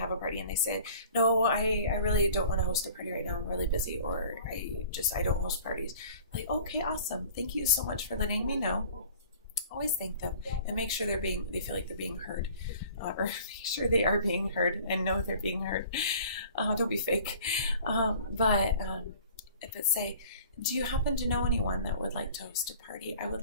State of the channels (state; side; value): inverted; both; correlation -0.47